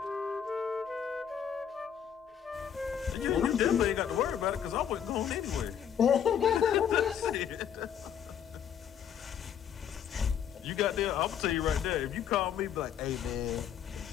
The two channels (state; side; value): quieter; right; 8.6 dB